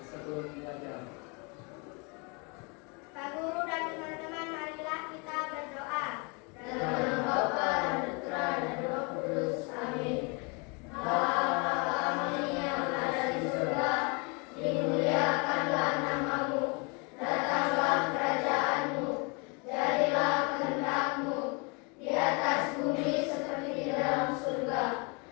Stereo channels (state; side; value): quieter; right; 31.9 dB